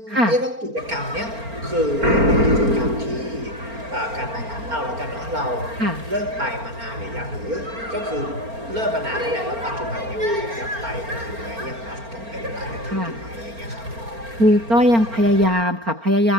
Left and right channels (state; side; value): late; left; 4.4 ms